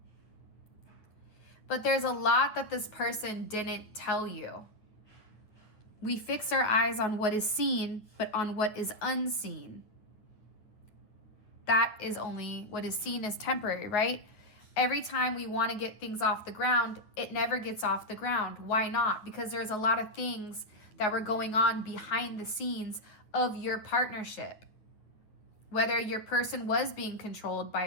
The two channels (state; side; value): late; right; 9.3 ms